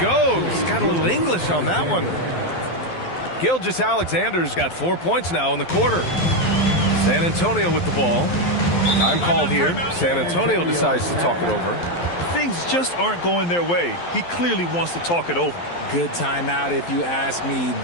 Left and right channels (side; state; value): right; late; 12 ms